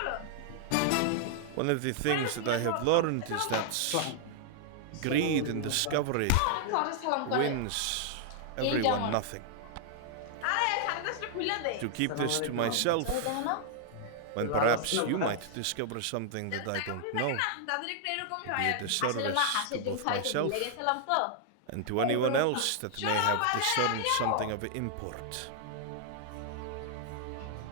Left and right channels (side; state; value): both; different; correlation -0.01